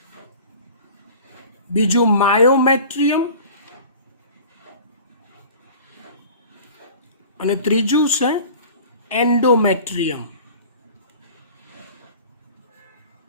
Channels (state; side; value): inverted; both; correlation -0.42